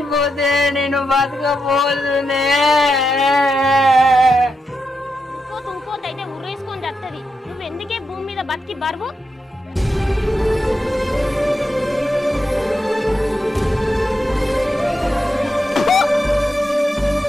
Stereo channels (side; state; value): both; normal; correlation 0.85